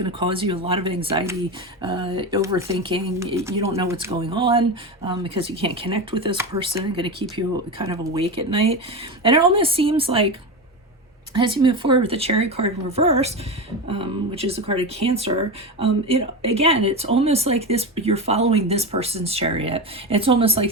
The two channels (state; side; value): normal; both; correlation 0.20